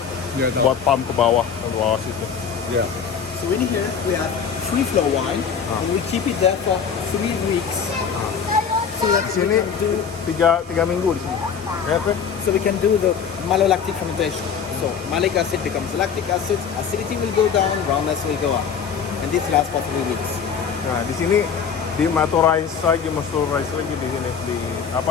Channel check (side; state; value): right; quieter; 6.8 dB